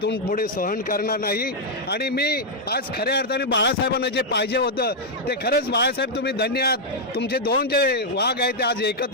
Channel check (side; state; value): both; normal; correlation -0.03